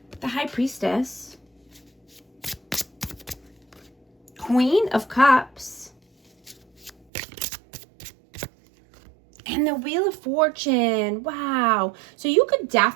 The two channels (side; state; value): left; drops out; at 7.1 s